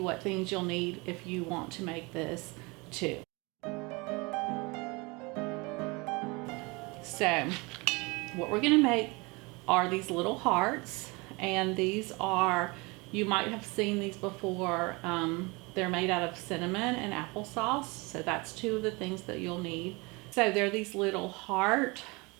what things you'll need if you want to make this too. So what we're going to make are these little hearts, and these are, you might have seen these before. They're made out of cinnamon and applesauce, so that's two of the things that you'll need. So they're these little heart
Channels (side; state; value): left; quieter; 26.5 dB